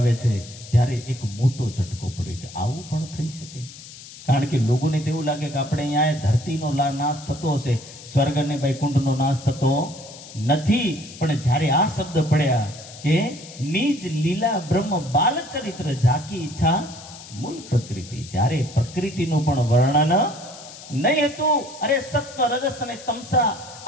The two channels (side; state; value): left; noise; hiss, 16 dB below the sound